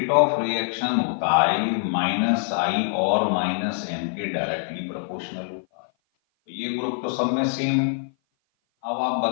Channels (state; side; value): silent; right; 56 dB below the other